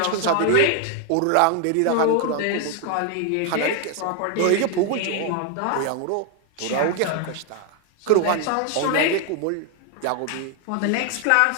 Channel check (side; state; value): both; different; correlation 0.00